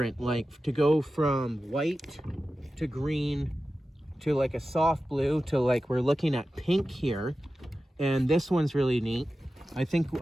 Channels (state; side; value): normal; both; correlation 0.94